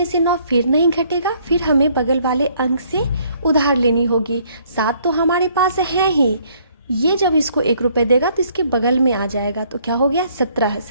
से 9 फिर नहीं घटेगा, फिर हमें बगल वाले अंक से उधार लेनी होगी। 7 तो हमारे पास है ही, ये जब इसको 1 रुपये देगा तो इसके बगल में आ जाएगा। तो क्या हो गया? 17।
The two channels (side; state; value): both; inverted; correlation -0.64